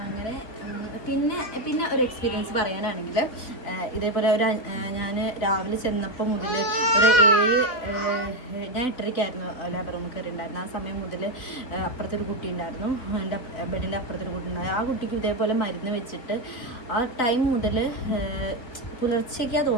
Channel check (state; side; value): late; right; 4.1 ms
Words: അങ്ങനെ പിന്നെ ഒരു എക്സ്പീരിയൻസ് പറയാനാണെങ്കിൽ ഇതേപോലെ ഞാൻ രാവിലെ ചെന്നപ്പോൾ മുതൽ ഒരു 7 ഞാൻ 8:30ക്കായിരുന്നു ലേബർ റൂമിൽ കയറി ഉണ്ടായിരുന്നു. ആ സമയം മുതൽ അപ്പുറത്തൊരു കുട്ടി ഉണ്ടായിരുന്നു, എൻ്റെ ബെഡിൻ്റെ അപ്പുറത്തൊരു കുട്ടി ഉണ്ടായിരുന്നു. ആ കുട്ടിക്ക് ഇതേപോലെ മരുന്ന് വെച്ചിട്ട് ആ ടൈം മുതൽ പുലർച്ചയ്ക്കാണ്